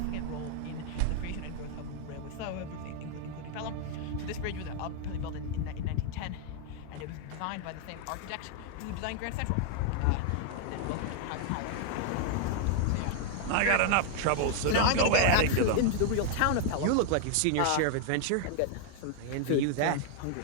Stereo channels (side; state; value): both; different; correlation 0.00